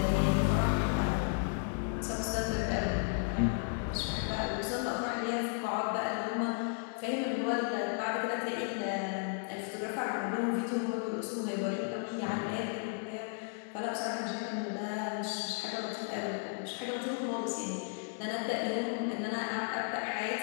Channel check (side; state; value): right; silent; 55 dB below the other